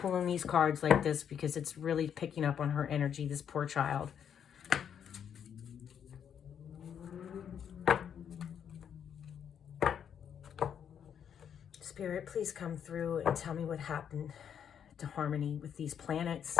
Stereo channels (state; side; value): quieter; right; 8.4 dB